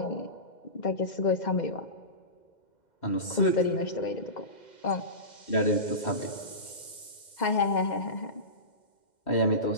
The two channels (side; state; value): right; late; 2.1 ms